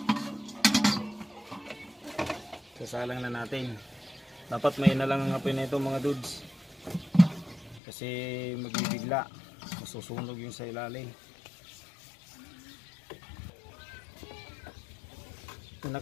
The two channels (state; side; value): drops out; right; at 7.8 s